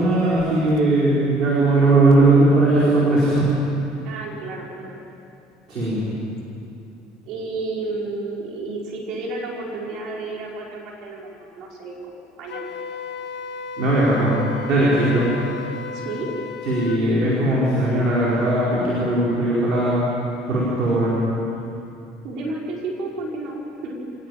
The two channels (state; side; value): normal; both; correlation 0.57